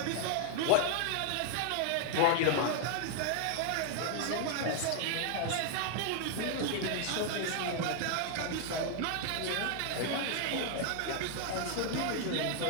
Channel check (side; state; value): both; different; correlation 0.00